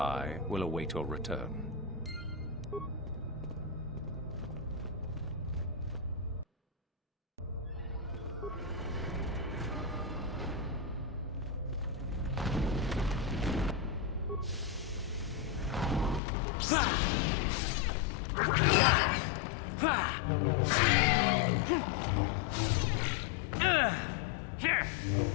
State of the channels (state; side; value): drops out; right; at 16.2 s